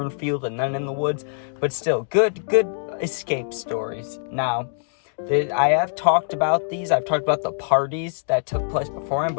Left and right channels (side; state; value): right; silent; digital silence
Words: and then in the woods. But still, good escape stories. Now, I have talked about these. I've talked about the parties that took place beforehand,